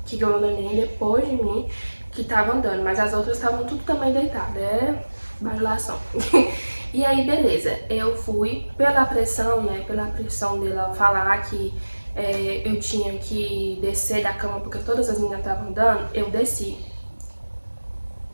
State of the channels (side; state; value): both; inverted; correlation -1.00